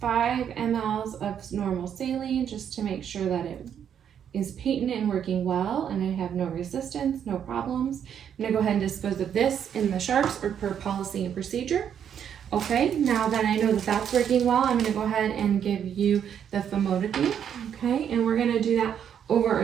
5 mLs of normal saline, just to make sure that it is patent and working well, and I have no resistance, no problems. I'm gonna go ahead and dispose of this in the sharps or per policy and procedure. Okay, now that I know that that's working well, I'm gonna go ahead and give you the famotidine, okay? And we're gonna do that over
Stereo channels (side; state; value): left; quieter; 8.7 dB